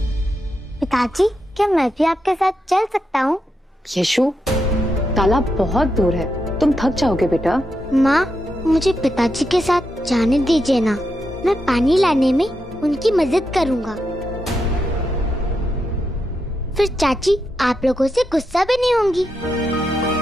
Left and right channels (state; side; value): normal; both; correlation 0.84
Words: पिताजी, क्या मैं भी आपके साथ चल सकता हूँ? यशु, तालाब बहुत दूर है, तुम थक जाओगे बेटा। माँ, मुझे पिताजी के साथ जाने दीजिए ना, मैं पानी लाने में उनकी मदद करूँगा। फिर चाची आप लोगों से गुस्सा भी नहीं होंगी।